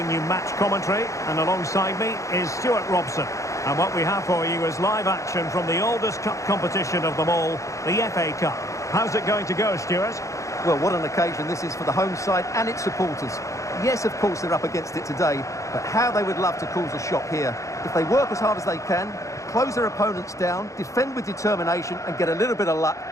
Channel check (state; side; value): late; right; 0.15 ms